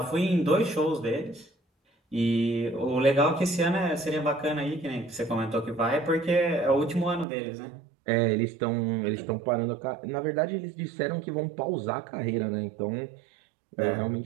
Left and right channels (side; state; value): left; drops out; at 7.2 s